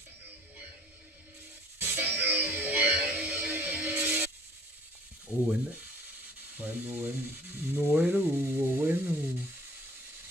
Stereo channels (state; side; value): normal; both; correlation 0.53